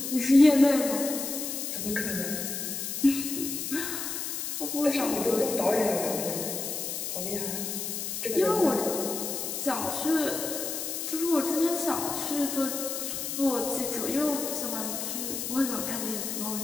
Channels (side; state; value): left; noise; hiss, 4 dB below the sound